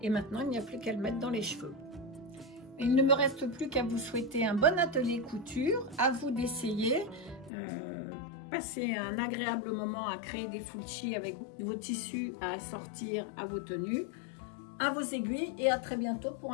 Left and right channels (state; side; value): drops out; right; at 7.5 s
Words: et maintenant il n'y a plus qu'à le mettre dans les cheveux. Il ne me reste plus qu'à vous souhaiter un bon atelier couture, à vous d'essayer, passer un agréable moment à créer des full-chi avec vos tissus à assortir à vos tenues, à vos aiguilles et à très bientôt pour